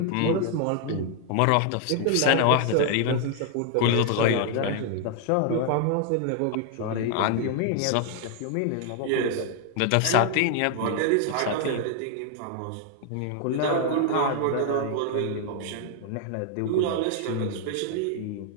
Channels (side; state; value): both; different; correlation 0.00